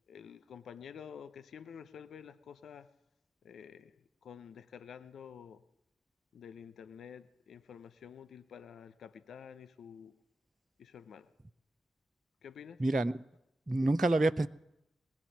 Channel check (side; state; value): both; normal; correlation 0.92